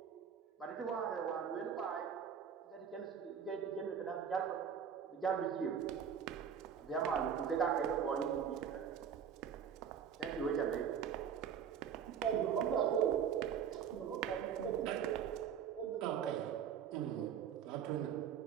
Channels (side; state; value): left; quieter; 7.9 dB